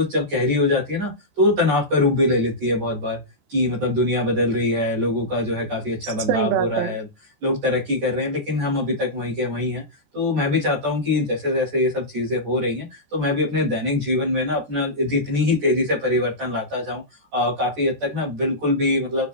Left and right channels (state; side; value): late; left; 14 ms